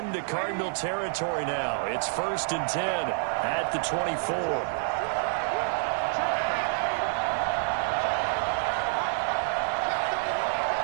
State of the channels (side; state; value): left; silent; 59 dB below the other